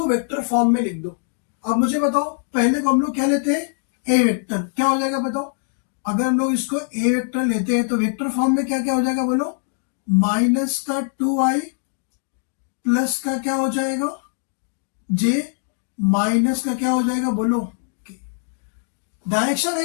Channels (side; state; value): right; silent; 59 dB below the other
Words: वेक्टर फॉर्म में लिख दो। अब मुझे बताओ, पहले को हम लोग क्या लेते हैं, ए वेक्टर। क्या हो जाएगा बताओ, अगर हम लोग इसको ए वेक्टर लेते हैं तो वेक्टर फॉर्म में क्या क्या हो जाएगा बोलो, माइनस का 2i प्लस का क्या हो जाएगा जे, माइनस का क्या हो जाएगा बोलो के। डायरेक्शन